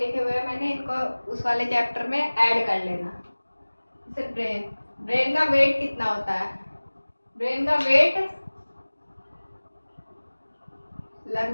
हुए हैं मैंने। इनको उस वाले चैप्टर में ऐड कर लेना। जैसे ब्रेन का वेट कितना होता है। ब्रेन का वेट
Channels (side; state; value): both; inverted; correlation -1.00